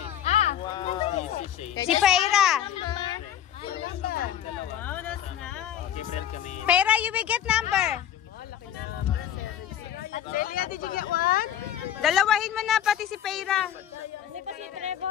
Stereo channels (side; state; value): right; quieter; 10.3 dB